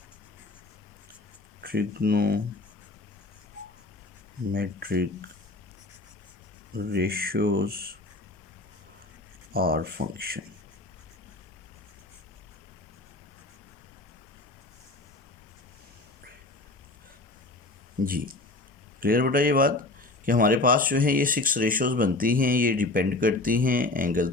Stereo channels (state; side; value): quieter; right; 3.0 dB